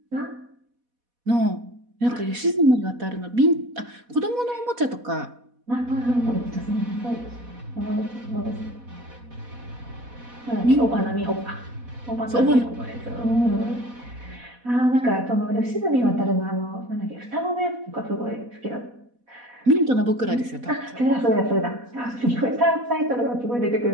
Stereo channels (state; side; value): late; left; 4.1 ms